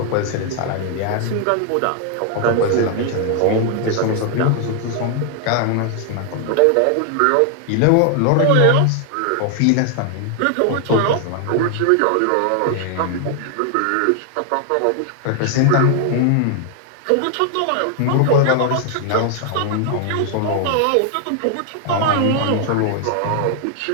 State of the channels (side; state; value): both; different; correlation 0.00